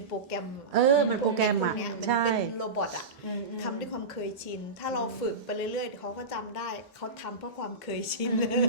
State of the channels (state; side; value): quieter; left; 3.6 dB